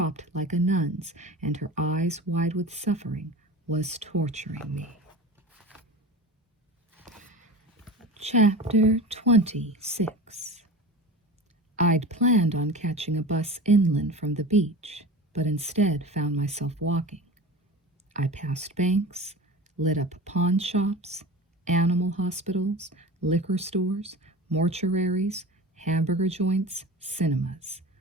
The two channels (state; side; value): normal; both; correlation 0.33